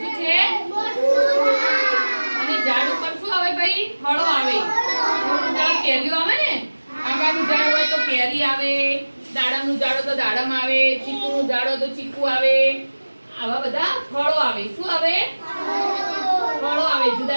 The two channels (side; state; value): both; inverted; correlation -1.00